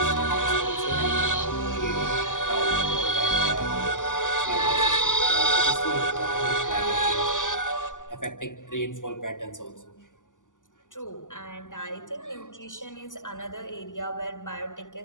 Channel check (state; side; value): late; right; 0.87 ms